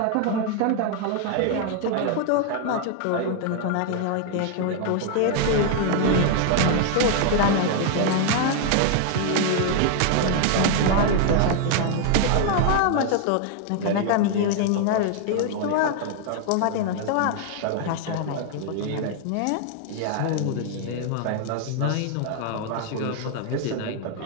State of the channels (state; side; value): different; both; correlation 0.00